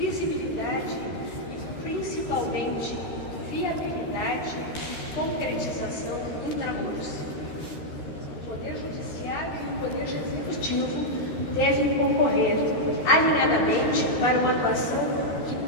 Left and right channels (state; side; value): late; right; 13 ms